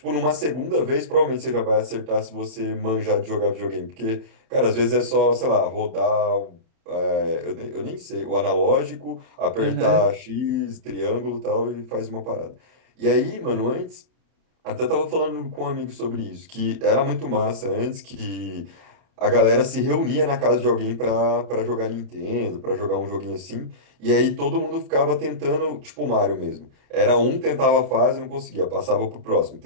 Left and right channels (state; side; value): late; left; 31 ms